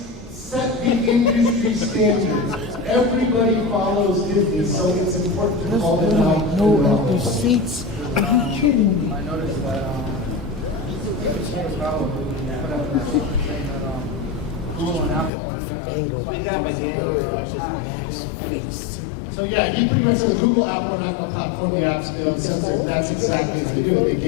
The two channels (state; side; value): drops out; right; at 15.3 s